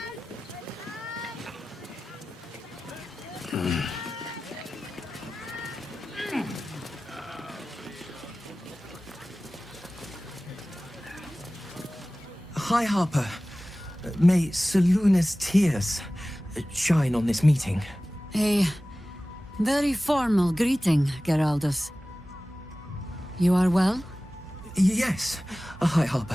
Hi, Harper. May Seluna's tears shine on this meeting. A very formal greeting, Geraldus. You are well? Yes. Hi,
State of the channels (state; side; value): normal; both; correlation 0.97